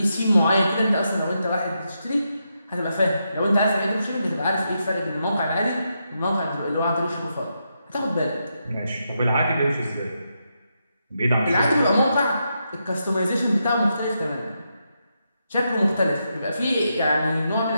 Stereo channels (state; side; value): inverted; both; correlation -0.83